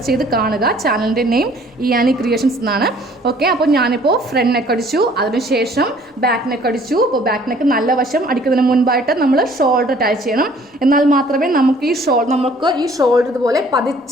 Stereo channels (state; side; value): normal; both; correlation 0.56